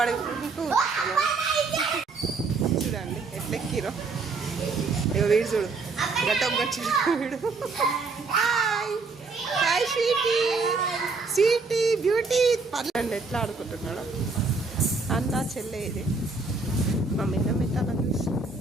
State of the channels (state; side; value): quieter; left; 4.1 dB